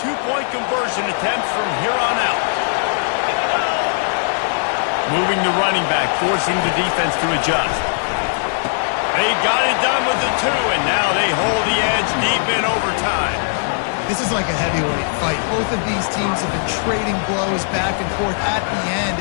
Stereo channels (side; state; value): right; silent; digital silence